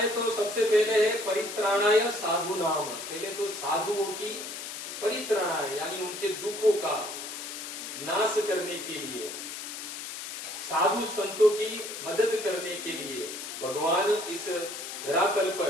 तो सबसे पहले है परित्राणाय साधु नाम, पहले तो साधुओं की परित्राणाय यानी उनके दुखों का नाश करने के लिए, साधु संतों की मदद करने के लिए भगवान इस धरातल पर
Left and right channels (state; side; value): noise; left; hiss, 8 dB below the sound